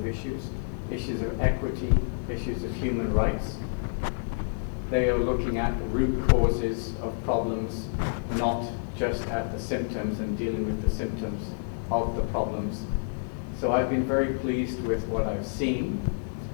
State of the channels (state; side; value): silent; right; digital silence